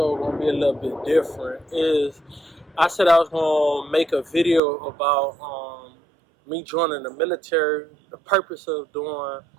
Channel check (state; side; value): drops out; left; at 4.6 s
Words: gonna be a little bit different. I said I was gonna make a video about me joining the military, the purpose of doing